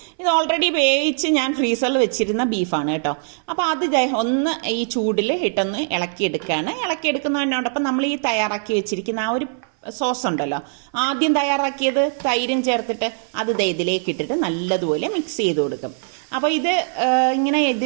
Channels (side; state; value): left; silent; 58 dB below the other